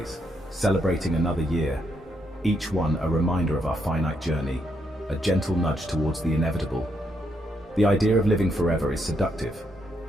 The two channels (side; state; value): both; normal; correlation 0.77